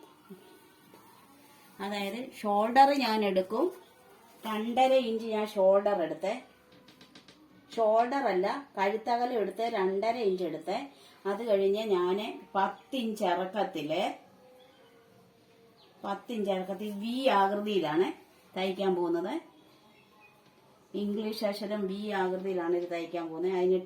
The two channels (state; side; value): identical; both; correlation 1.00